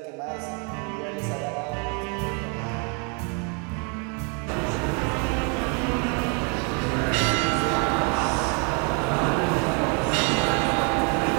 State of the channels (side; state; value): left; quieter; 36.1 dB